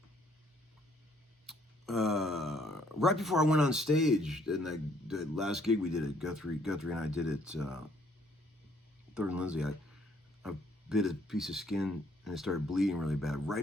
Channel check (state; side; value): normal; both; correlation 0.65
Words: Right before I went on stage, and the last gig we did at Guthrie and I did it, Third and Lindsay, I bit a piece of skin and it started bleeding really bad